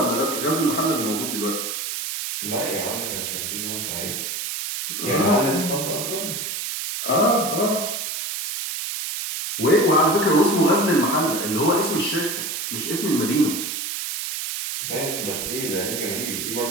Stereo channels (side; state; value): right; noise; hiss, 4 dB below the sound